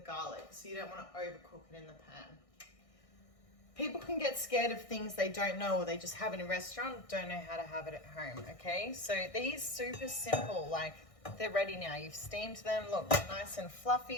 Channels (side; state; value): right; late; 1.6 ms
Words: So you don't want to overcook it in the pan. People can get scared of things they don't know or they just have in a restaurant, don't know how to have it at home, okay? So these super simple, like, they're ready now. You've steamed them. Look, nice and